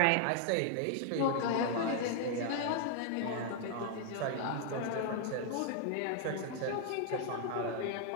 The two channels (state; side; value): different; both; correlation 0.00